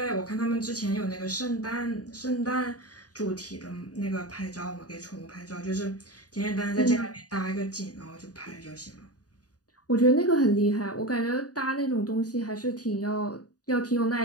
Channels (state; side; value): late; right; 0.68 ms